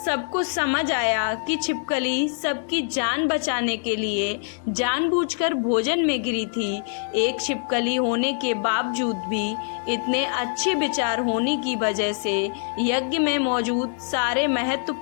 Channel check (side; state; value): right; silent; digital silence